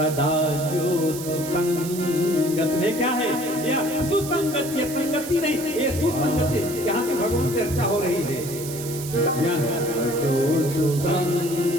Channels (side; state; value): right; noise; hiss, 10 dB below the sound